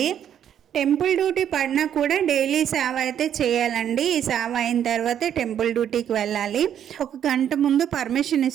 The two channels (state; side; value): quieter; left; 9.6 dB